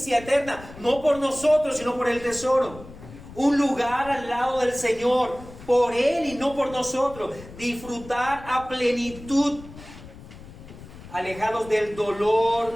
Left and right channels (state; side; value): noise; left; rumble, 17 dB below the sound